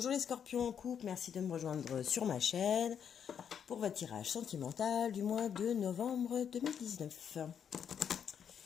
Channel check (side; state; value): right; quieter; 8.0 dB